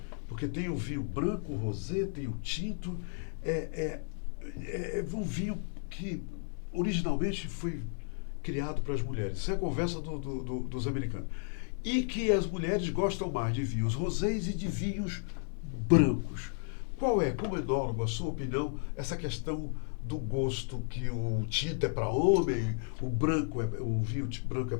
porque tem o vinho branco, o rosé, tem o tinto, é um vinho que originalmente foi criado para as mulheres. Isso é a conversa dos americanos. E que as mulheres gostam mais de vinhos rosés e de vinhos brancos. Qual é, como enólogo, a sua opinião, essa questão do gosto que o tinto é para homem, o vinho branco é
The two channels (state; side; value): silent; right; 56 dB below the other